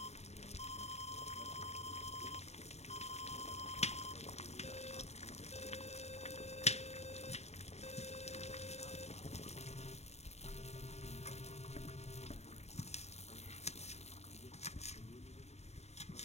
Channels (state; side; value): late; right; 0.32 ms